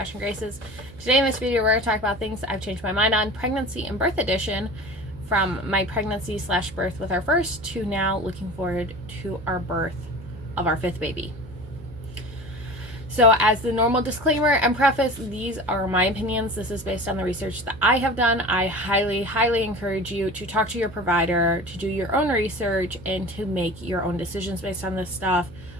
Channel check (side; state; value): right; noise; hum, 20 dB below the sound